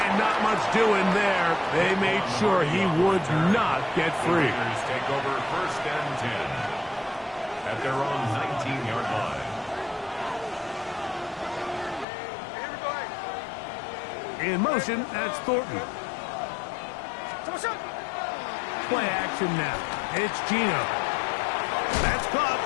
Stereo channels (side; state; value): right; drops out; at 12.1 s